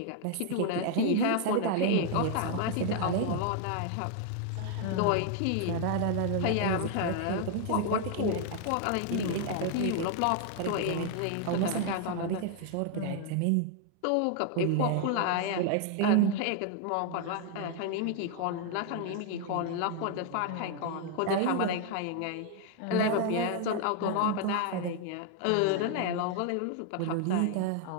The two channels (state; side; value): different; both; correlation 0.00